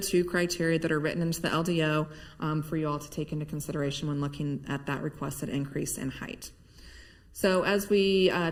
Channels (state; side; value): identical; both; correlation 1.00